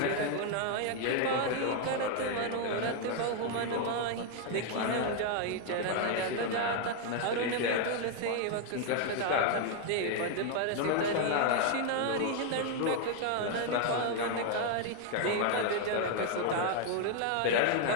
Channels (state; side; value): different; both; correlation 0.00